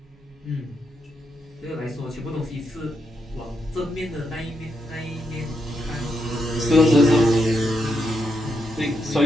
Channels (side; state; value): both; normal; correlation 0.81